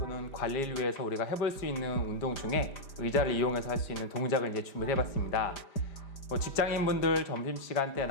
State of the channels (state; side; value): late; right; 5.0 ms